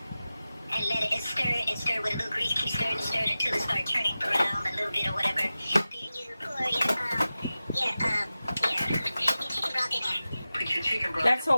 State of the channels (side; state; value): both; inverted; correlation -0.95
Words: And let it stir with a little grease. Keep stirring until it starts turning brown a little bit or whatever. Then you pour your chicken broth in there. Put your chicken broth. That's